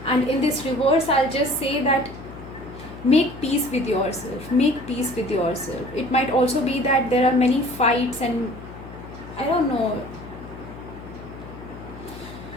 And in this reverse, I'll just say that make peace with yourself. Make peace with yourself. It might also be that there are many fights and I don't know,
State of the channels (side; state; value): left; noise; hum, 14 dB below the sound